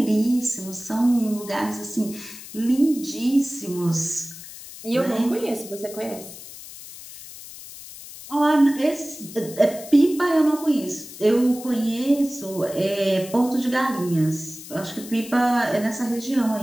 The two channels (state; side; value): noise; left; hiss, 15 dB below the sound